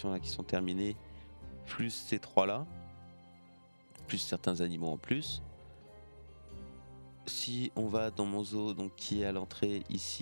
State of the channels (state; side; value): inverted; both; correlation -1.00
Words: là qui sont terminées, plus ces 3 là, plus certains animaux en plus. Si on va dans mon zoo donc qui est à l'entrée